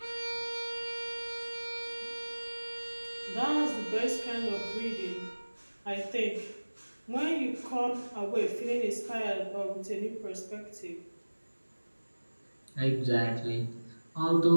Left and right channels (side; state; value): both; inverted; correlation -1.00